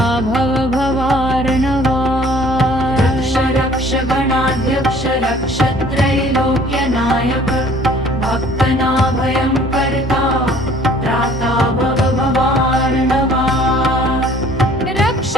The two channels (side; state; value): both; normal; correlation 0.54